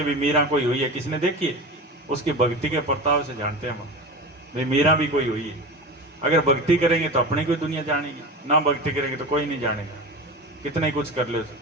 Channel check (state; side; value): normal; both; correlation 0.28